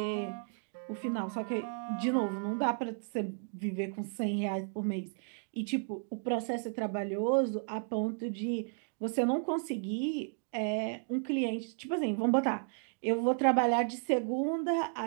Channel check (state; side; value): silent; left; 55 dB below the other